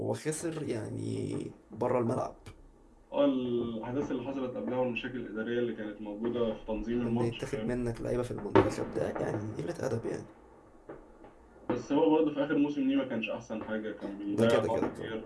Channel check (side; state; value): both; identical; correlation 1.00